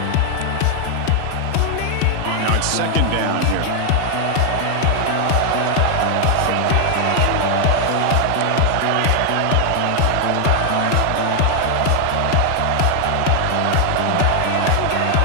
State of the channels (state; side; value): different; both; correlation 0.00